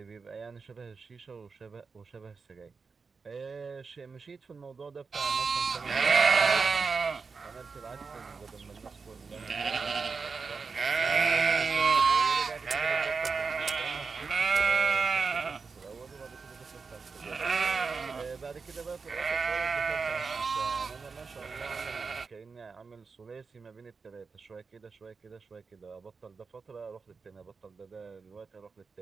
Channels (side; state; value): left; quieter; 4.9 dB